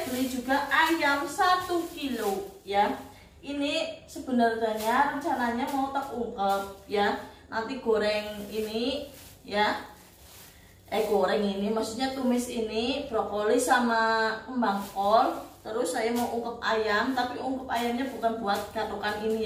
beli juga ayam 1 kilo ya. Ini sebenarnya rencananya mau tak ungkep ya. Nanti goreng ini ya. Goreng ini maksudnya tumis ini brokoli sama kembang kol. Terus saya mau ungkep ayam, tapi ungkep ayamnya bukan buat gatokan ini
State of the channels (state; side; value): identical; both; correlation 1.00